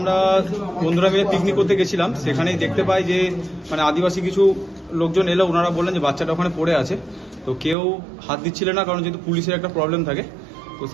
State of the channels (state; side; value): drops out; left; at 7.8 s